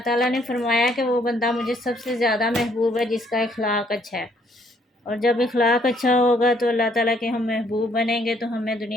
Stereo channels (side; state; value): both; normal; correlation 0.66